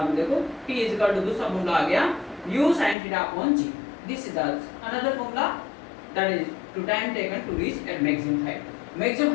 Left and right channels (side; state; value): right; drops out; at 3.0 s